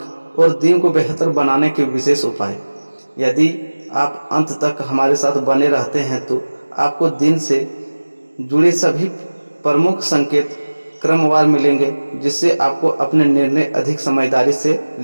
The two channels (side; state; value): both; inverted; correlation -1.00